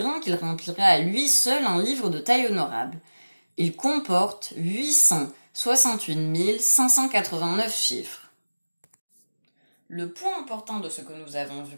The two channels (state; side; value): inverted; both; correlation -1.00